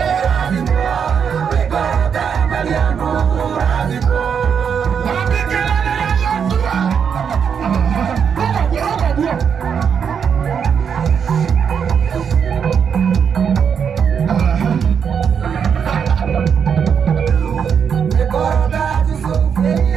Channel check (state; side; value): quieter; left; 7.1 dB